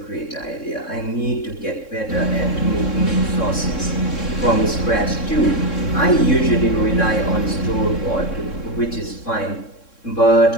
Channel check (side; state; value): right; late; 3.6 ms